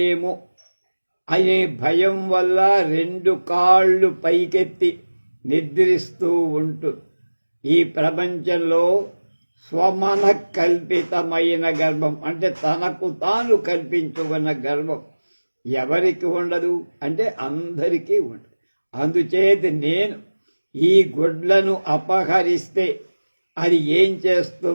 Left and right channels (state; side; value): inverted; both; correlation -1.00